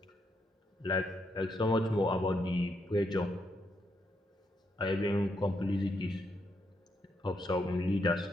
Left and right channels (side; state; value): both; normal; correlation 0.79